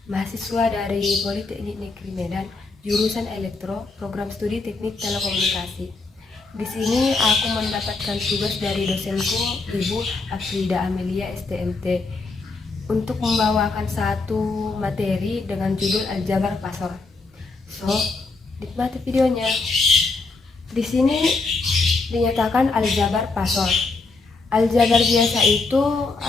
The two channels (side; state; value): right; quieter; 3.8 dB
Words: mahasiswa dari Politeknik Negeri Medan, jurusan Elektro, program studi Teknik Telekomunikasi. Di sini aku mendapatkan tugas dari dosenku, Ibu Afrida Amelia STMT, untuk membawakan satu materi dengan judul Aljabar Pasor. So, nikmati videonya. Di sini dinyatakan aljabar pasor. Aljabar biasa itu